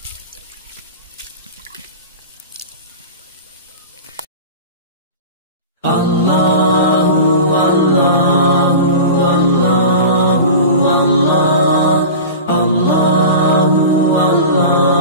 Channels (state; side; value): inverted; both; correlation -0.32